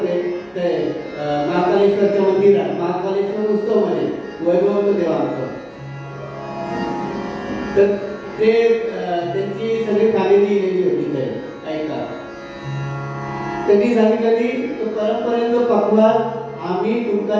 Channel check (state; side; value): identical; both; correlation 1.00